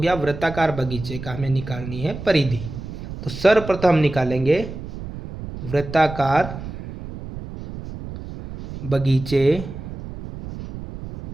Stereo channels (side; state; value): right; noise; rumble, 10 dB below the sound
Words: वृत्ताकार बगीचे का हमें निकालनी है परिधि। तो सर्वप्रथम हम निकालेंगे वृत्ताकार बगीचे